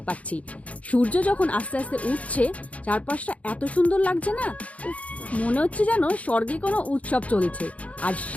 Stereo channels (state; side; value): late; right; 0.066 ms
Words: পারছি। সূর্য যখন আস্তে আস্তে উঠছে, চারপাশটা এত সুন্দর লাগছে না, মনে হচ্ছে যেন স্বর্গে কোনো উৎসব চলছে। আর